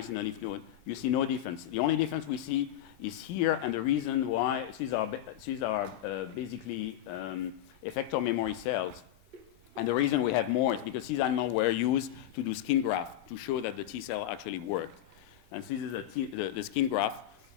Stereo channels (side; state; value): right; quieter; 12.1 dB